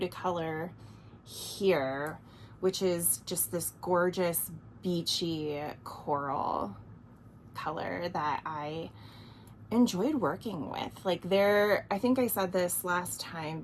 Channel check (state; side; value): identical; both; correlation 1.00